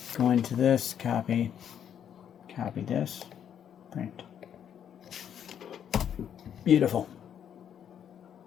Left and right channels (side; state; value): right; quieter; 9.0 dB